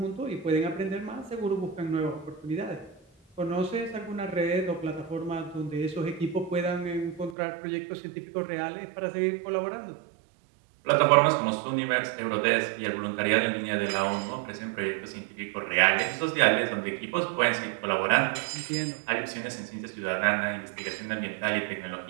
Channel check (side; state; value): left; drops out; at 7.4 s